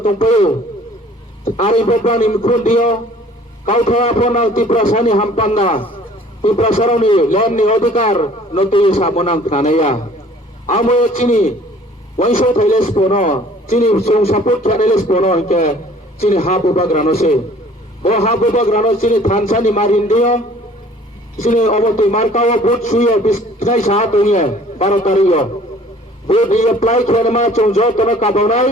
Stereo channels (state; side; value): normal; both; correlation 0.52